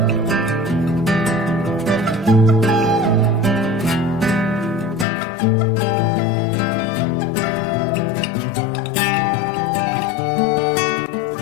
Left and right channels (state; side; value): drops out; right; at 5.1 s